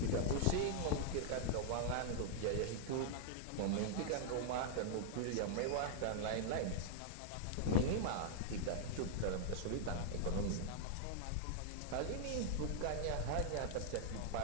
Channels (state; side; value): different; both; correlation -0.01